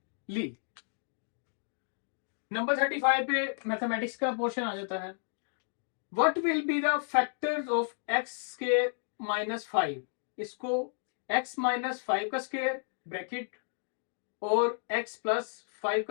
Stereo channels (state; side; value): silent; right; digital silence